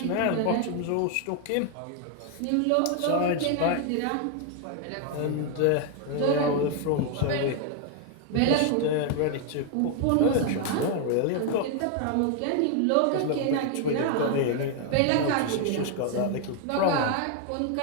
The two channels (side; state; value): both; different; correlation 0.01